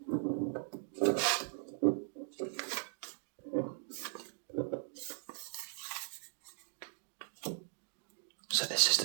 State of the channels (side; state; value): left; silent; digital silence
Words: So this is the